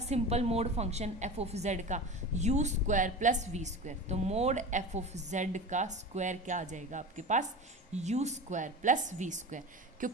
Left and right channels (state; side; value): normal; both; correlation 0.30